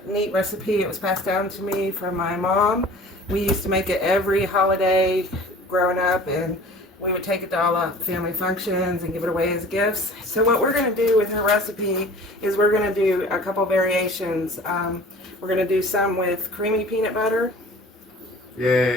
neat recipe. It was passed down to me from my mom. We used to make it every holiday growing up, and we would take it to all the family functions and give it away as gifts. So what we're going to do with her recipe is we're going to do a couple variations. We're going to do some with creamy peanut butter.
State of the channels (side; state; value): both; normal; correlation 0.45